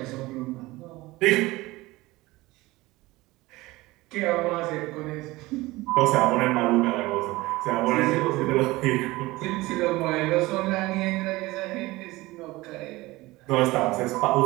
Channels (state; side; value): quieter; left; 20.1 dB